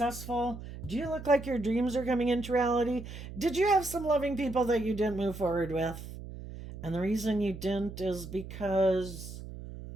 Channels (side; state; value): right; noise; hum, 11 dB below the sound